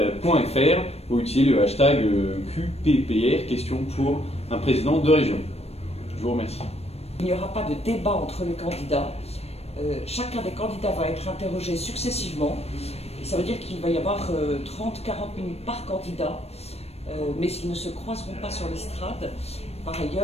ou utiliser le hashtag QPPR, question pour un président de région. Je vous remercie. Il n'y aura pas de débat entre les candidats. Chacun des candidats va être interrogé successivement. Et ça veut dire qu'il va y avoir 30-40 minutes par candidat, mais ils ne se croiseront pas sur l'estrade. Par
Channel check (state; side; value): late; right; 0.30 ms